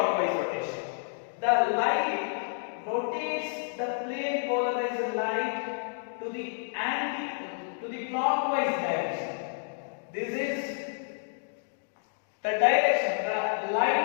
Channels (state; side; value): silent; right; digital silence